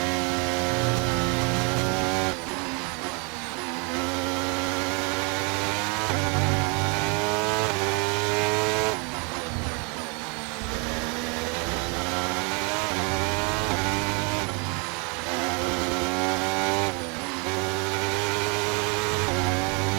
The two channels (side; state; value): left; quieter; 33.6 dB